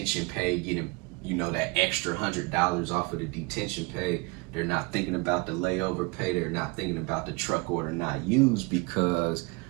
pay, getting, you know, that extra $100 off of the detention pay. They're not thinking about the layover pay. They're not thinking about the truck order not used, because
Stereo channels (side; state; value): left; quieter; 27.8 dB